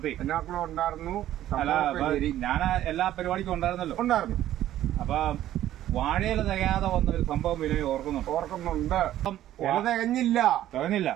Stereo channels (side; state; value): left; quieter; 12.9 dB